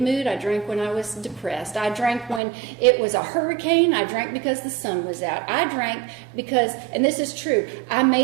mood. I drank when I was depressed. I drank when it was a hurricane. I drank because the sun was out. I drank because, and this is true, I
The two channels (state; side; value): drops out; left; at 2.4 s